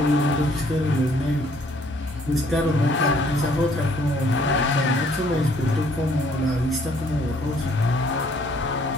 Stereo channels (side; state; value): both; normal; correlation 0.62